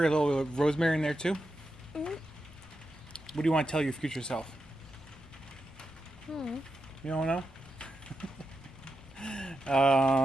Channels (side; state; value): both; normal; correlation 0.88